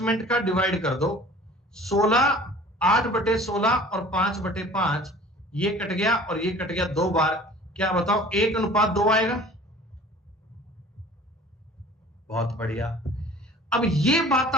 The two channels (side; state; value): both; normal; correlation 0.47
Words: का डिवाइड कर दो। 8/16 और 5/5, ये कट गया और ये कट गया 2 बार। क्या बताओ 1:2 आएगा? बहुत बढ़िया। अब ये बात